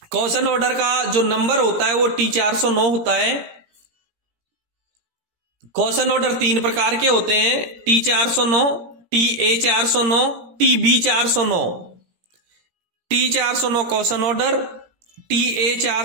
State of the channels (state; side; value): late; left; 17 ms